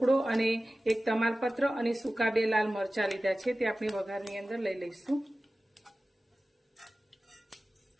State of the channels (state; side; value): normal; both; correlation 0.96